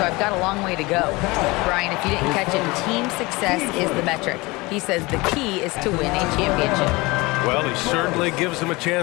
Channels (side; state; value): right; quieter; 23.2 dB